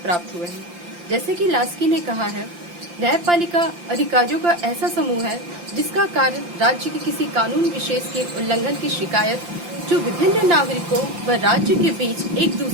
हुए हैं। जैसे कि लास्की ने कहा है, न्यायपालिका अधिकारियों का ऐसा समूह है जिसका कार्य राज्य के किसी कानून विशेष के उल्लंघन की शिकायत जो विभिन्न नागरिकों व राज्य के बीच एक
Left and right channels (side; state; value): left; late; 5.8 ms